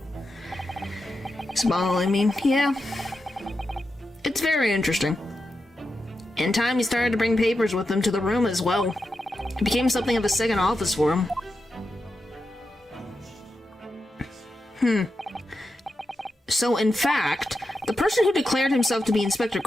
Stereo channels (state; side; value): normal; both; correlation 0.88